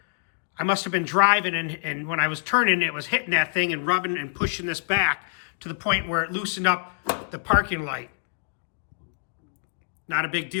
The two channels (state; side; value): silent; right; digital silence